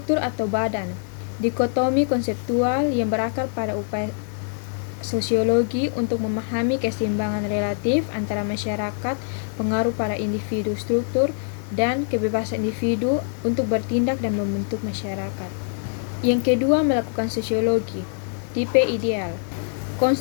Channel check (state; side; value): silent; right; 63 dB below the other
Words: atau badan, dikotomi konseptual yang berakar pada upaya sosiologi untuk memahami keseimbangan relatif antara masyarakat, pengaruh pada individu, struktur, dan kebebasan individu untuk bertindak dan membentuk masyarakat. Yang kedua, melakukan sosiologi. Tipe ideal,